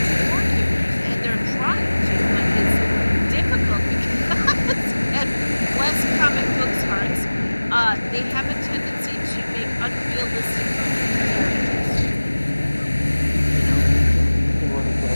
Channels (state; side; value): inverted; both; correlation -1.00